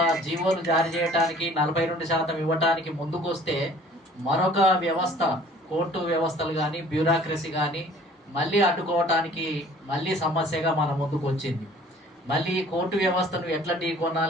జీవోలు జారీ చేయడానికి 42% ఇవ్వటానికి ముందుకు వస్తే మరొక వ్యవస్థ, కోర్టు వ్యవస్థలు కానీ బ్యూరోక్రసీ కానీ మళ్ళీ అడ్డుకోవటానికి మళ్ళీ సమస్యగా మన ముందుకు వచ్చింది. మళ్ళీ కోర్టు వ్యవస్థను ఎట్లా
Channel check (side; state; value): both; normal; correlation 0.52